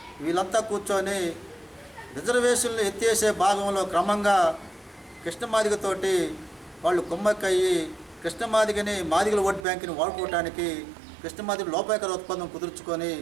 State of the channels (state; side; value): drops out; left; at 9.7 s